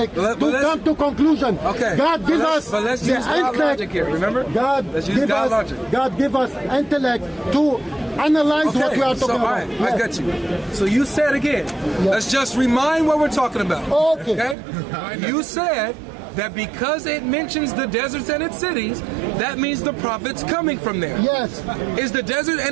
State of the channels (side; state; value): left; drops out; at 14.6 s